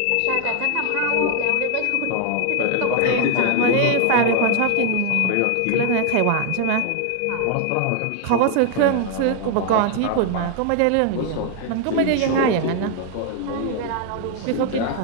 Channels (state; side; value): different; both; correlation 0.00